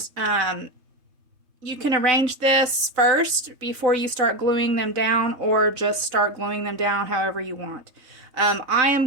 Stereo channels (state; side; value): late; left; 4.0 ms